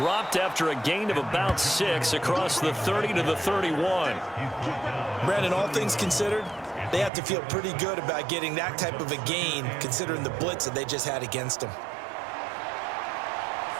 after a gain of about 6 across the 30 to the 31. Brandon, all things considered, they have to feel pretty good about getting that type of a gain considering the blitz that they just had against them.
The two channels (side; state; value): left; drops out; at 7.1 s